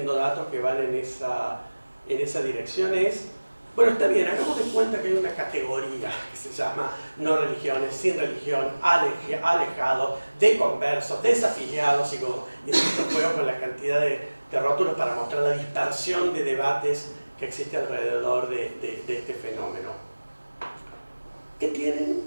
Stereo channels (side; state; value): both; inverted; correlation -1.00